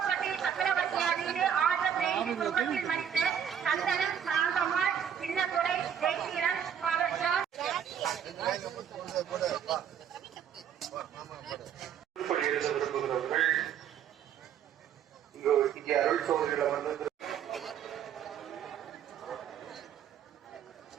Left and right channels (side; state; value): left; quieter; 8.6 dB